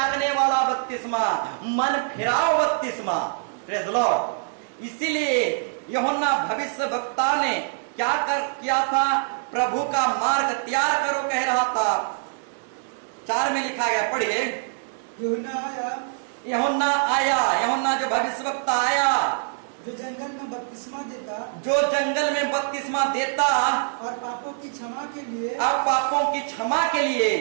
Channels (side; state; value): left; silent; digital silence